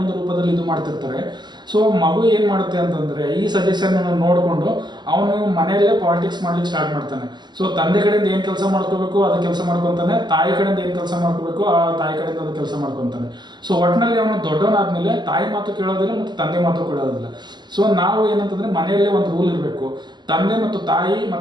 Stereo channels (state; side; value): late; left; 0.21 ms